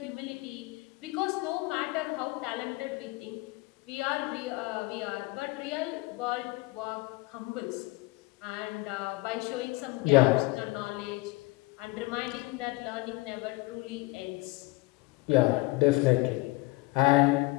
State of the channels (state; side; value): quieter; right; 22.4 dB